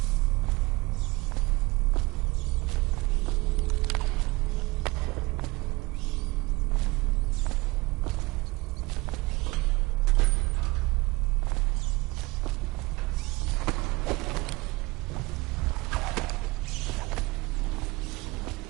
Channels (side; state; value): left; quieter; 23.5 dB